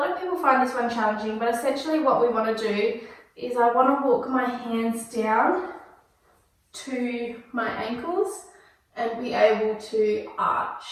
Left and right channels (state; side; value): identical; both; correlation 1.00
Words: of people find this one challenging, but essentially what we want to do is I want to walk my hands down to my ankles and be able to arch